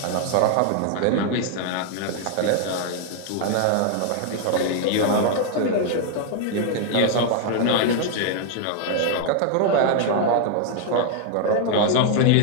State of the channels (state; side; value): different; both; correlation 0.00